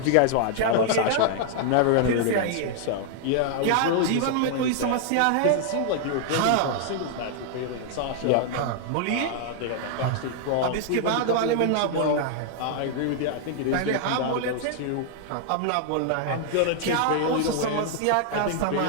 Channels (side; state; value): both; different; correlation 0.00